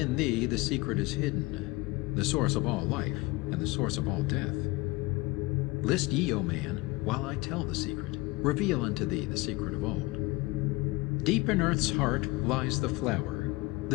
thee the secret is hidden, the source of all life, and the source of all death. List ye, O man, while I tell the secret, reveal unto thee the secret of old. Deep in earth's heart lies the flower,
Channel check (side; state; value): right; quieter; 22.7 dB